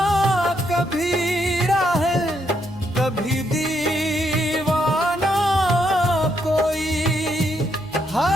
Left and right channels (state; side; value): noise; left; hum, 26 dB below the sound